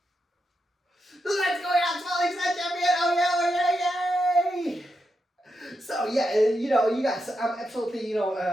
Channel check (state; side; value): normal; both; correlation 0.85